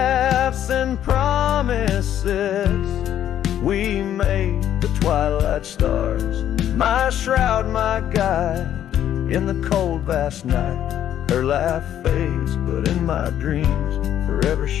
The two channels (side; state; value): right; quieter; 10.8 dB